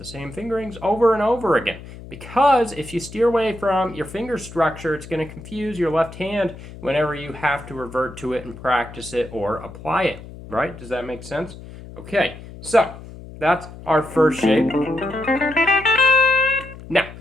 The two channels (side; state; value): left; noise; hum, 15 dB below the sound